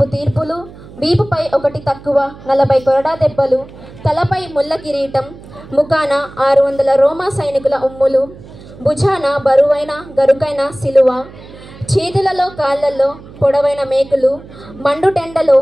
తీర్పులు, వీపుపై 1 తక్కువ, 40 కొరడా దెబ్బలు, తలపై ముళ్ళ కిరీటం, ముఖాన 600 రోమా సైనికుల ఉమ్ములు, భుజాన బరువైన గరుకైన సిలువ, చేతులలో కాళ్ళల్లో పొడవైన మేకులు, మండుటెండలో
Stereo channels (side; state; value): right; noise; hum, 19 dB below the sound